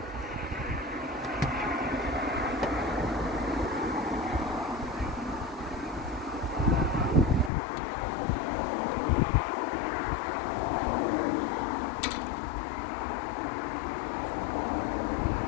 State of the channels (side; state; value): right; drops out; at 7.5 s